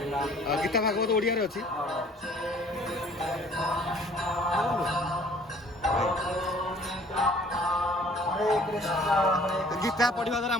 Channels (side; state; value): both; normal; correlation 0.54